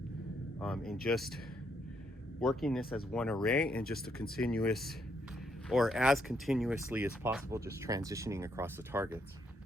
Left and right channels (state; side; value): normal; both; correlation 0.75